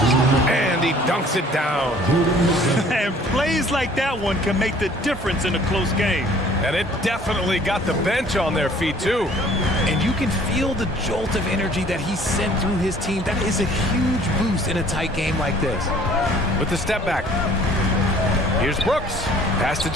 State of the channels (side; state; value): both; normal; correlation 0.54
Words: And he dunks it down. And plays like that one can make the difference in a close game. And it definitely got the bench on their feet, too. And you can feel the jolt of energy that he sent through his team. That is a huge boost in a tight game like this. With the step back. Here's Brooks. Pass to